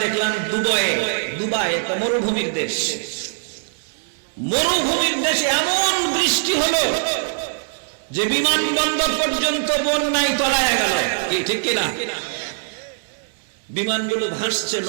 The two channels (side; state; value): left; silent; 65 dB below the other